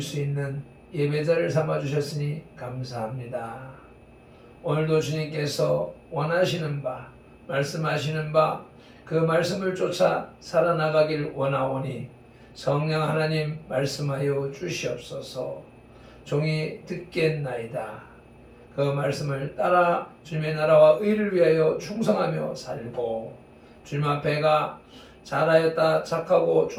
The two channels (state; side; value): identical; both; correlation 1.00